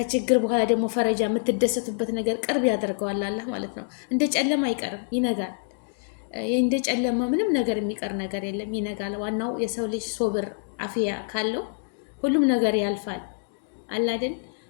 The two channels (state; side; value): silent; right; digital silence